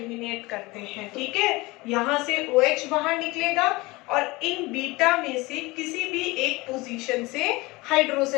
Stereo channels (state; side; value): quieter; right; 22.5 dB